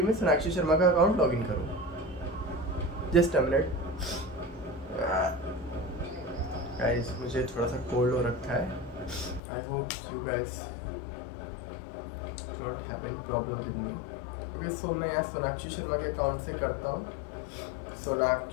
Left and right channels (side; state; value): right; drops out; at 9.4 s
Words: में सोनाक्षी शर्मा का अकाउंट लॉगिन करूँ. जस्ट अ मिनट गाइस, मुझे थोड़ा सा कोल्ड हो रखा है. I hope you guys not have any problem with me. Okay, so मैं यहाँ सोनाक्षी शर्मा के अकाउंट से करता हूँ.